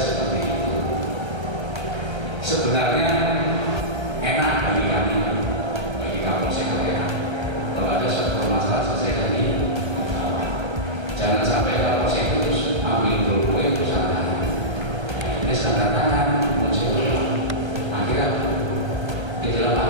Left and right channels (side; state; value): left; late; 1.3 ms